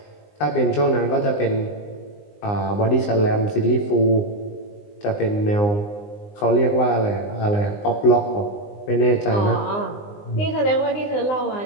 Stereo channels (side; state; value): right; late; 19 ms